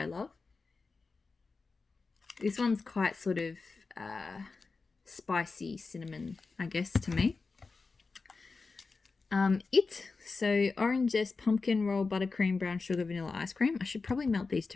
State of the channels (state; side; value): quieter; right; 4.2 dB